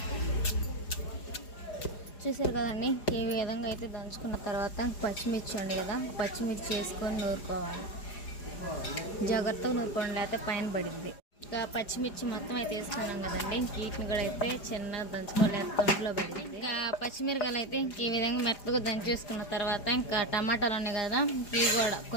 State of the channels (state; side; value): late; right; 4.9 ms